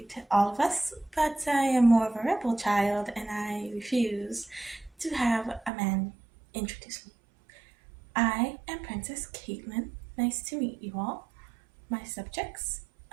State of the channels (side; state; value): left; drops out; at 5.7 s